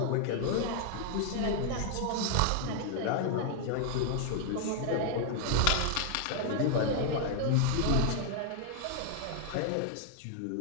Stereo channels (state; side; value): different; both; correlation 0.00